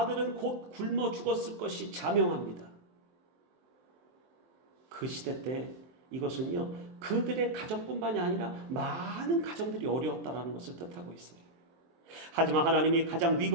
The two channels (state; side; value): late; left; 23 ms